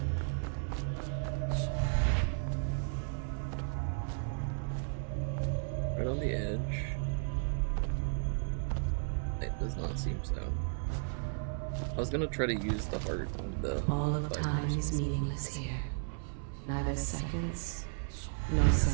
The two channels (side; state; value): left; silent; 55 dB below the other